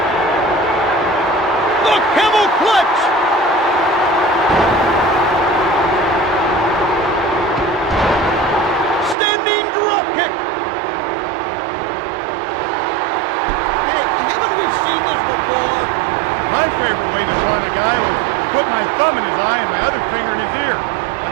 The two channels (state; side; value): drops out; left; at 9.2 s